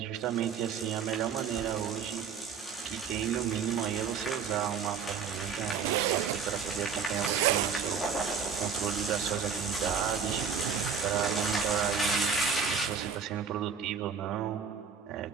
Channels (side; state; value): left; quieter; 6.5 dB